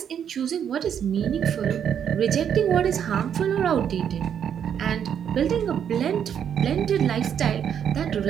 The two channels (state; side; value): quieter; left; 8.6 dB